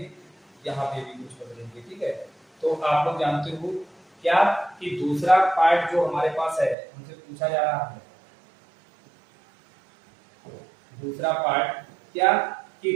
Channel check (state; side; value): drops out; left; at 6.8 s